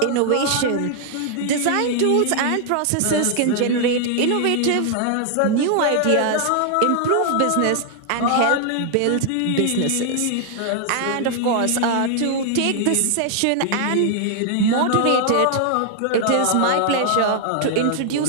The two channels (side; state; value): both; different; correlation 0.00